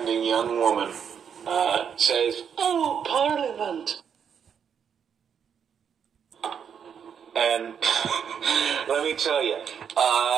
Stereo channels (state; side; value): quieter; left; 7.6 dB